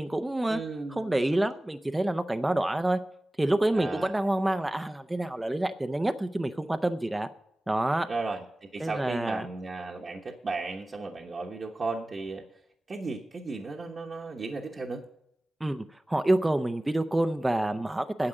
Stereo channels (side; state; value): both; normal; correlation 0.97